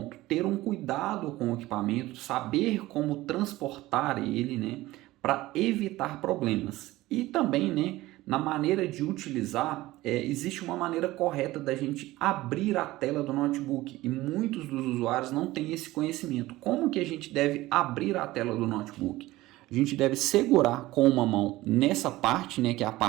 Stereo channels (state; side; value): quieter; left; 17.7 dB